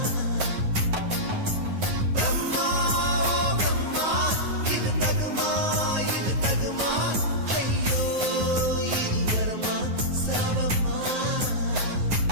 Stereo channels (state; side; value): late; left; 9.4 ms